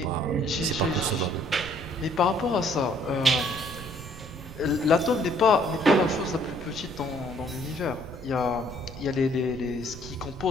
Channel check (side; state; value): right; noise; rumble, 15 dB below the sound